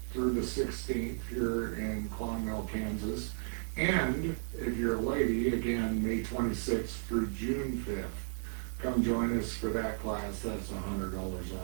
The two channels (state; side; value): silent; left; 55 dB below the other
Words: through the 16th here in Clonmel, Kansas. And if you're a lady, again, May 26th through June 5th. Come join us for that class. That's $100